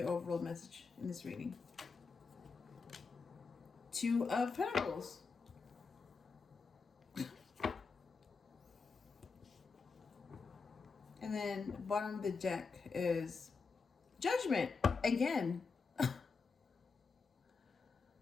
overall message in this reading? 2 of Pentacles. And then bottom of the deck is Judgment again.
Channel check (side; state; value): right; quieter; 4.8 dB